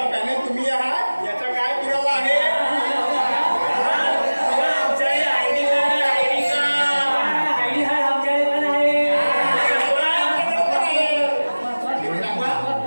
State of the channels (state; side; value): inverted; both; correlation -1.00